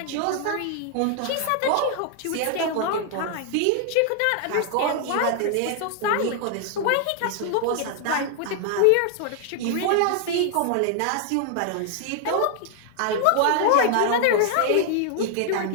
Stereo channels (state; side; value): different; both; correlation 0.00